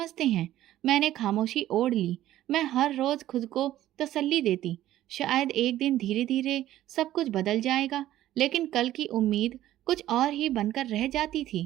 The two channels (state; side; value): quieter; left; 13.6 dB